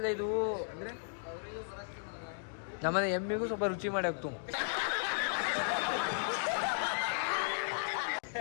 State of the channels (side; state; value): right; silent; digital silence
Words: ಇದು ಅಂದರೆ ನಮ್ಮನೆ ಎಮ್ಮಿಗೂ ಸ್ವಲ್ಪ ರುಚಿ ಮಾಡಿ ಹಾಕ್ತು.